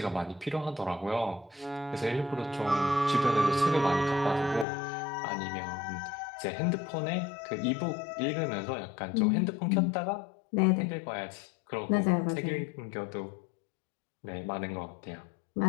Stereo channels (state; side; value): drops out; right; at 4.7 s